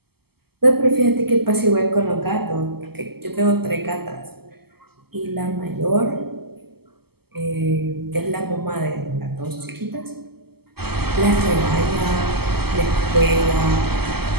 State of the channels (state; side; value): late; left; 0.96 ms